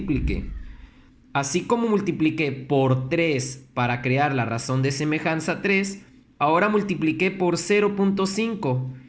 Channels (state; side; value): identical; both; correlation 1.00